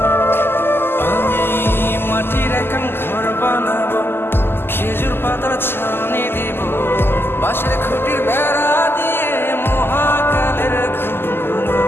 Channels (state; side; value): late; right; 0.11 ms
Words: আমি মাটির এখন ঘর বানাবো, খেজুর পাতার ছাউনি দিব। বাঁশের খুঁটির বেড়া দিয়ে মহাকালের ঘুম